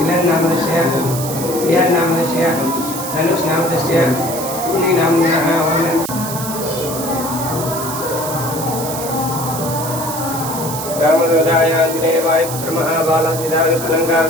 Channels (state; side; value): noise; right; hiss, 8 dB below the sound